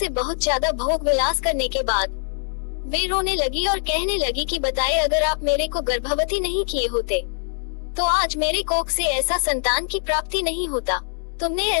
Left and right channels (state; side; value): silent; right; digital silence